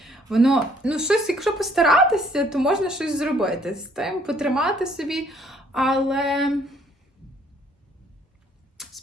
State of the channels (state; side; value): normal; both; correlation 0.63